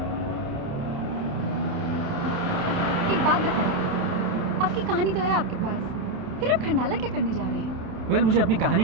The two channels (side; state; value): left; late; 28 ms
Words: एक बात बताइए, आपकी कहानी तो है आपके पास, फिर आप खंडाला क्या करने जा रहे हैं? वेल मुझे अपनी कहानी